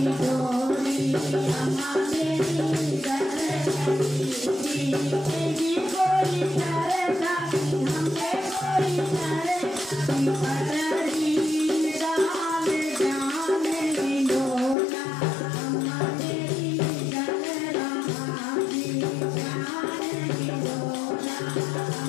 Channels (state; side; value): drops out; right; at 14.8 s